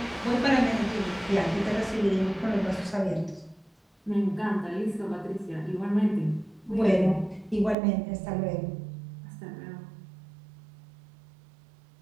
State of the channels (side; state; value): left; drops out; at 7.8 s